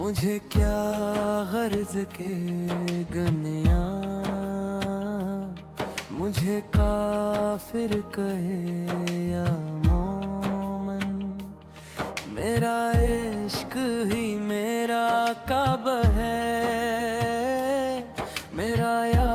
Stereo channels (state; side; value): identical; both; correlation 1.00